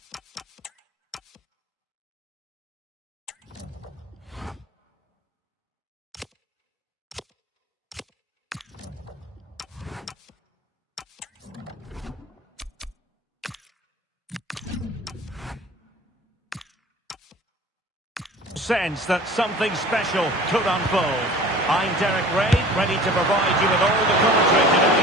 sense that something special could unfold. I'm Derek Ray, ready to provide you with all the commentary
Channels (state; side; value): normal; both; correlation 0.43